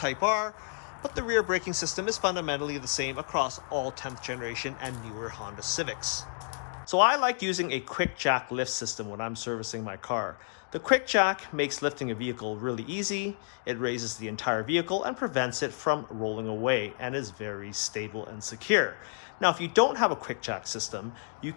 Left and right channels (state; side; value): silent; right; digital silence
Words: R, but the rear braking system is fundamentally the same across all 10th generation and newer Honda Civics. So I like using a quick jack lift system when I'm servicing my car. The quick jack makes lifting a vehicle really easy. It raises the entire vehicle and prevents it from rolling away and is very stable and secure. Now, if you don't have a quick jack system, you